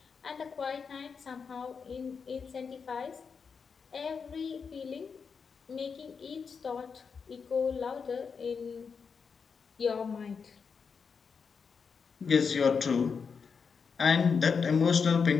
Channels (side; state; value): right; quieter; 5.7 dB